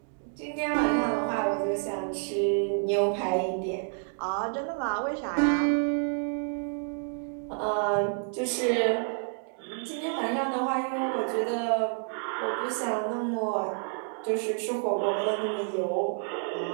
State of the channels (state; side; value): silent; left; 58 dB below the other